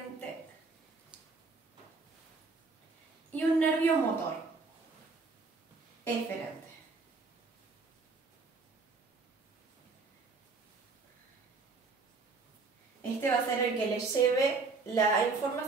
y un nervio motor, eferente. Este va a ser el que le lleve la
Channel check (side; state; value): left; quieter; 4.1 dB